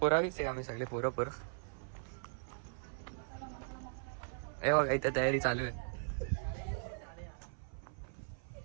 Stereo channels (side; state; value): left; silent; 52 dB below the other